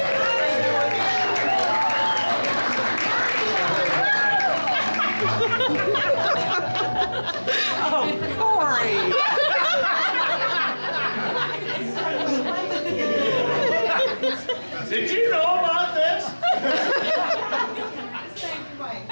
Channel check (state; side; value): inverted; both; correlation -1.00